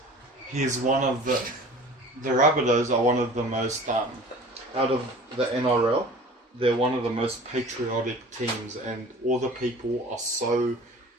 He's one of the Rabbitohs are one of the most, out of the NRL, they're one of the most patriotic teams, and all the people are so...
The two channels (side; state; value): both; normal; correlation 0.43